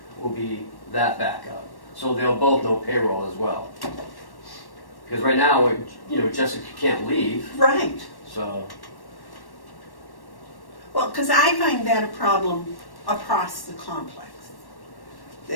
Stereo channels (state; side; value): late; right; 1.1 ms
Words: will be that backup. So they'll both know payroll as well. Because right now, Jessica can't leave, Right. so. Well, because I find that a problem across the complex.